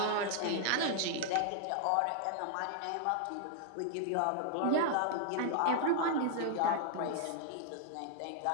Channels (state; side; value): different; both; correlation 0.00